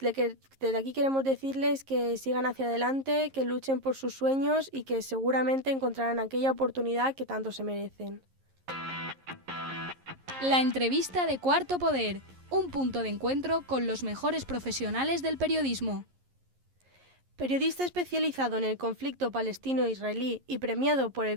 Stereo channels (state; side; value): late; left; 11 ms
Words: aquí queremos decirles que sigan hacia adelante, que luchen por sus sueños y que seguramente encontrarán aquella oportunidad que tanto se merecen. La entrevista de Cuarto Poder, un punto de encuentro con los mejores profesionales del periodismo. Periodista especializado en el conflicto palestino-israelí y premiado por el